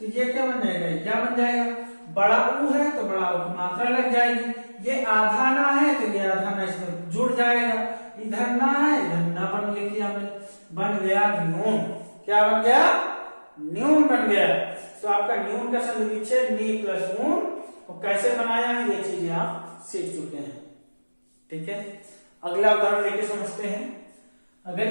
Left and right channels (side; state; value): both; inverted; correlation -1.00